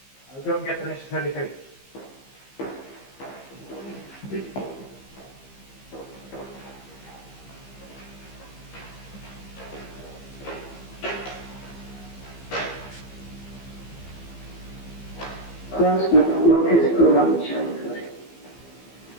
I'll go and get the necessary papers. First, work is good on the childhood.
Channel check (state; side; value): late; right; 15 ms